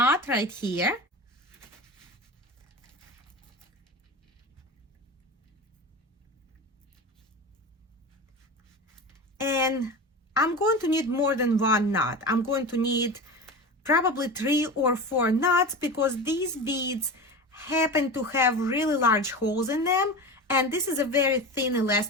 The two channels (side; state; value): both; normal; correlation 0.28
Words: right here. And I'm going to need more than one knot. I'm going to need probably 3 or 4 knots because these beads happen to have really large holes in them, and this is a very thin